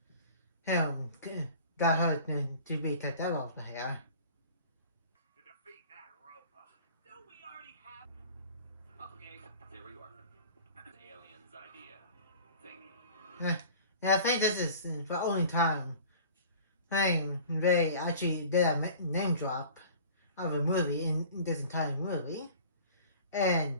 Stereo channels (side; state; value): both; inverted; correlation -0.44